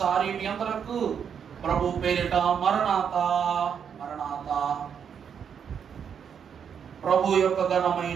మీ అందరకు ప్రభు పేరిట మరణాత మరణాత. ప్రభు యొక్క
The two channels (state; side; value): quieter; left; 7.5 dB